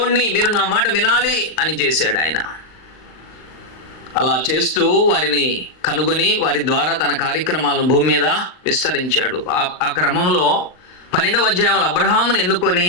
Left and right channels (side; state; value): right; late; 39 ms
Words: మీరు నా మాట వినాలి అని చేశాడు ఆయన. అలా చేస్తూ వారిని కనుగొని వారి ద్వారా తన కార్యక్రమాలను భూమి మీద విస్తరించాడు. ఆ క్రమంలో 12వ అధ్యాయంలో అబ్రహామును ఎన్నుకొని